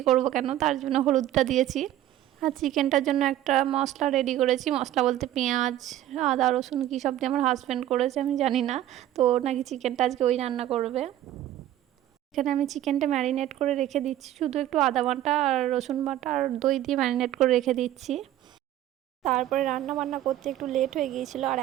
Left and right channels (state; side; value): quieter; left; 13.0 dB